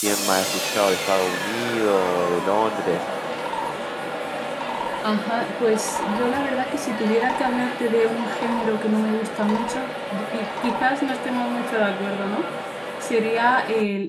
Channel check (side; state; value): both; identical; correlation 1.00